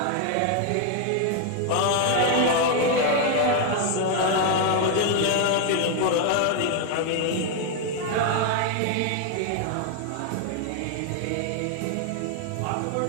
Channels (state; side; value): different; both; correlation 0.01